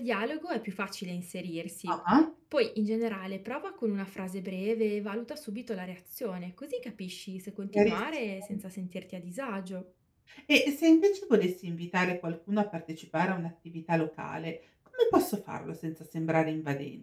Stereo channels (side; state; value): both; identical; correlation 1.00